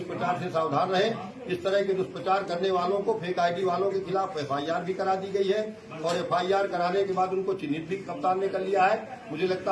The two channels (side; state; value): both; identical; correlation 1.00